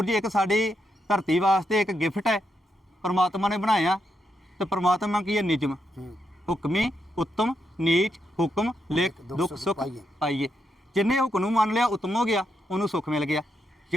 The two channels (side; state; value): both; normal; correlation 0.81